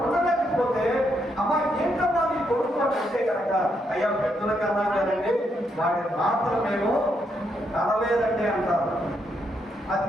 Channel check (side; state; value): both; normal; correlation 0.78